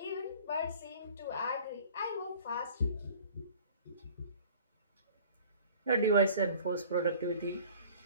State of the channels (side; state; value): both; inverted; correlation -0.48